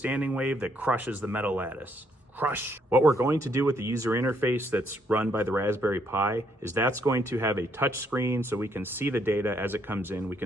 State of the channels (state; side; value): normal; both; correlation 0.72